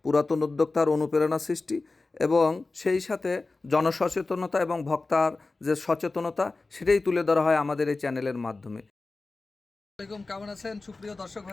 পুরাতন উদ্যোক্তার অনুপ্রেরণা সৃষ্টি এবং সেই সাথে জনসচেতনতা এবং ভোক্তার যে সচেতনতা সেটাই তুলে ধরা হয় আমাদের এই চ্যানেলের মাধ্যমে। আসসালামাইকুম, কেমন আছেন সুপ্রিয় দর্শক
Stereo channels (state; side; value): quieter; right; 3.5 dB